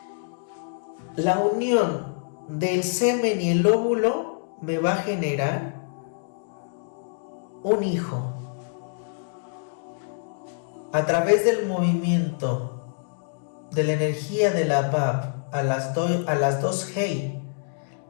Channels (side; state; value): right; silent; digital silence